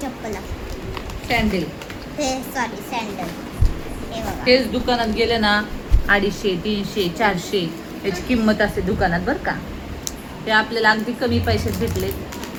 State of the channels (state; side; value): identical; both; correlation 1.00